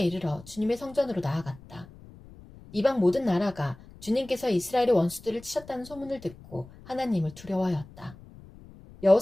주님의 성전으로 나아갔다. 이방 모든 나라가 주님께서 이스라엘의 원수들을 치셨다는 소문을 듣고 하나님을 두려워하였다.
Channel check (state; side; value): noise; left; rumble, 20 dB below the sound